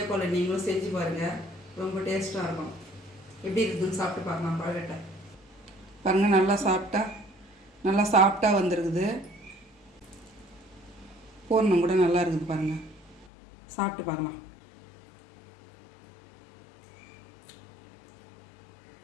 போல் நீங்களும் செஞ்சு பாருங்கள், ரொம்ப டேஸ்ட்டாக இருக்கும். எப்படி இருக்குதுன்னு சாப்பிட்டு பார்க்கலாம். கொழுக்கட்டை பாருங்கள், நல்லா சாப்பிட்டா வந்துருக்குது. பூரணம் கூட நல்லா இருக்குது பாருங்கள். சாப்பிட்டு பார்க்கலாம்.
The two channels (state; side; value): drops out; right; at 13.2 s